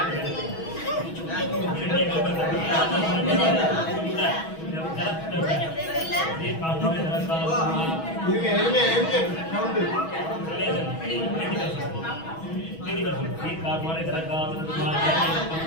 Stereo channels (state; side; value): late; right; 6.2 ms